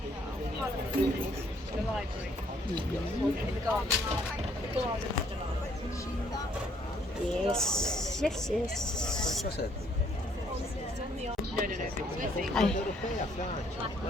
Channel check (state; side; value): normal; both; correlation 0.66